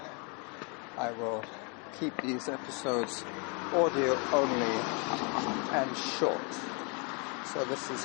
I will keep these episodes audio only and short. So this is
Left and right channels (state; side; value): quieter; right; 34.4 dB